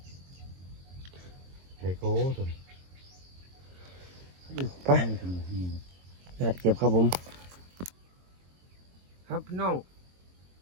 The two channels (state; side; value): late; left; 22 ms